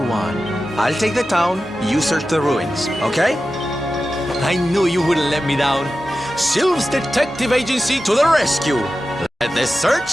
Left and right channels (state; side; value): normal; both; correlation 0.93